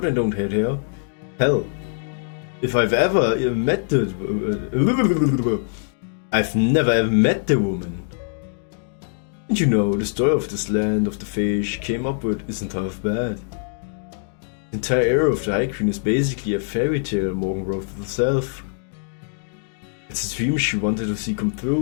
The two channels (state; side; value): silent; right; digital silence